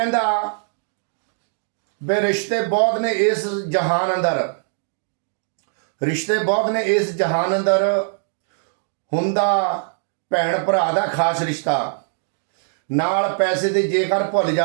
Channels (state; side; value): silent; left; digital silence